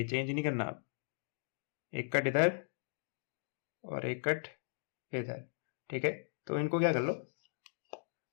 चेंज नहीं करना आप। एक कट इधर और एक कट इधर। ठीक है, तो इनको क्या कर लो?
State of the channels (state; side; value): silent; right; digital silence